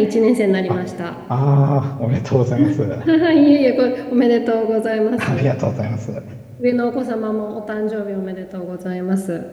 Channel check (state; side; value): identical; both; correlation 1.00